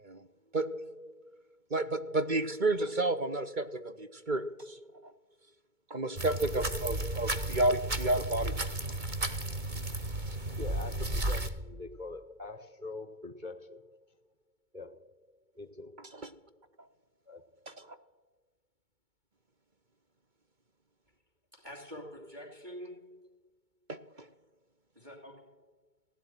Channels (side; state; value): left; late; 2.2 ms